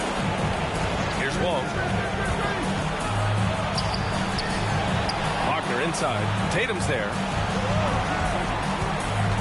Here's Wong. Wagner inside. Tatum's there.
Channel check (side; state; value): both; identical; correlation 1.00